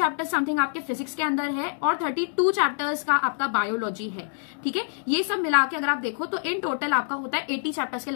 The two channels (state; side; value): silent; right; digital silence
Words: समथिंग आपके फिजिक्स के अंदर है, और 32 चैप्टर्स का आपका बायोलॉजी है। ठीक है, ये सब मिला के अगर आप देखो तो इन टोटल आपका होता है 80 चैप्टर्स के